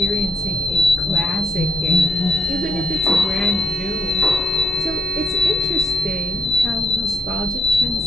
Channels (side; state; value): both; normal; correlation 0.76